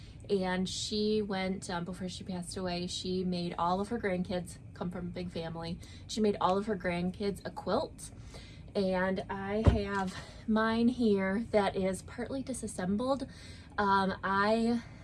and she went, before she passed away, she made all of her grandkids, come from a big family, she made all of her grandkids a quilt. And I have mine here that is partly disassembled. I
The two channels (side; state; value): both; identical; correlation 1.00